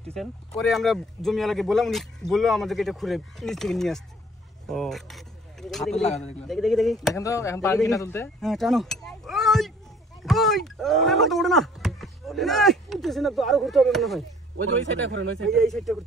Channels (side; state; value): both; normal; correlation 0.55